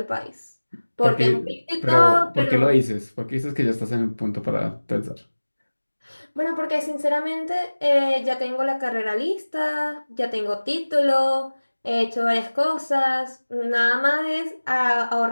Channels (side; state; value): both; inverted; correlation -1.00